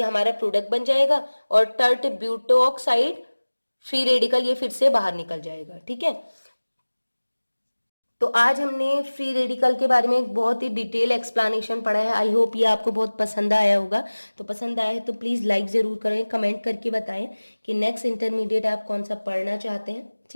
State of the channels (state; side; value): inverted; both; correlation -1.00